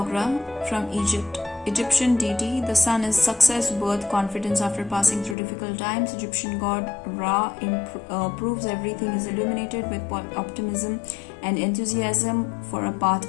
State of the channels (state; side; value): drops out; right; at 5.4 s